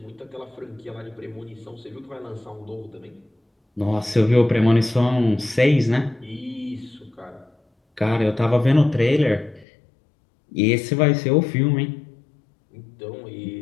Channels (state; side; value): drops out; right; at 9.7 s